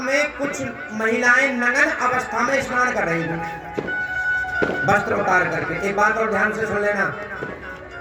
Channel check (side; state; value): both; identical; correlation 1.00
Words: में कुछ महिलाएं नग्न अवस्था में स्नान कर रही थी, वस्त्र उतार करके। एक बात और ध्यान से सुन लेना,